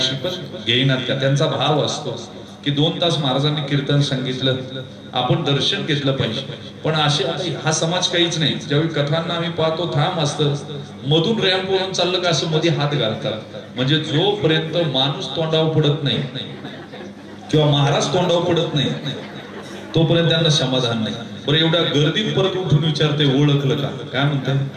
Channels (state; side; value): identical; both; correlation 1.00